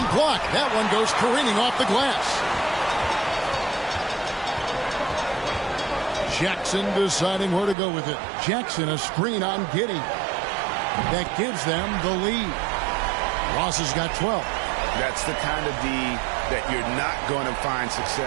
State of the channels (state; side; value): drops out; left; at 7.8 s